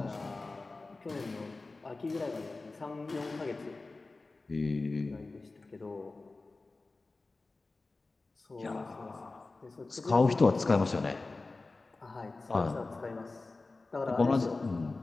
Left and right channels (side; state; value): right; quieter; 3.5 dB